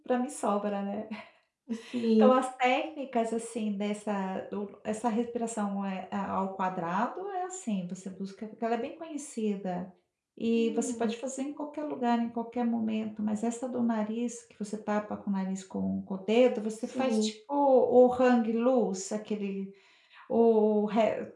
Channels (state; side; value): identical; both; correlation 1.00